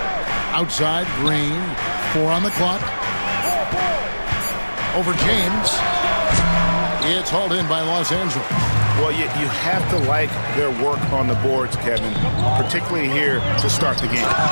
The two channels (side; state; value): both; inverted; correlation -1.00